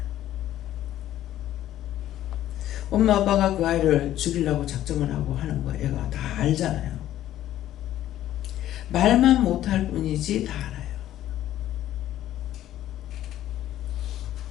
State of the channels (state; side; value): quieter; right; 12.8 dB